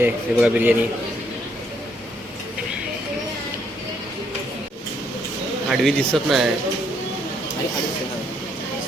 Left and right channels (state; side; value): normal; both; correlation 0.71